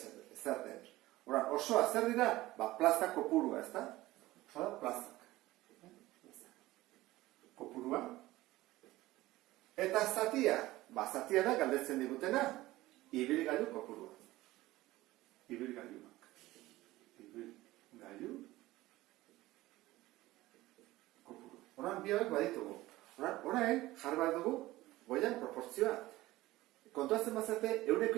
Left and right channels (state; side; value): quieter; left; 17.6 dB